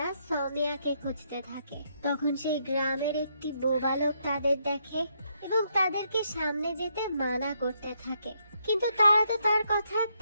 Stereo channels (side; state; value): both; inverted; correlation -0.76